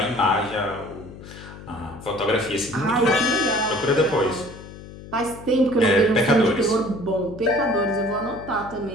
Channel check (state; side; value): noise; left; hum, 15 dB below the sound